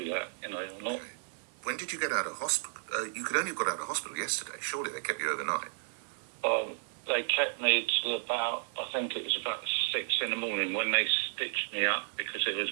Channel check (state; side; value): silent; left; digital silence